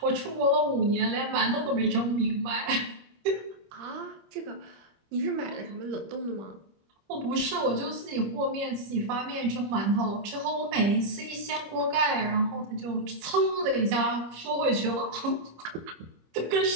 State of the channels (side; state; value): left; late; 25 ms